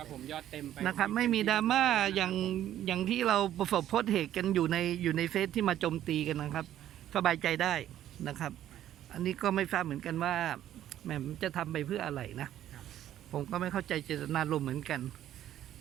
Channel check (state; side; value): quieter; left; 12.0 dB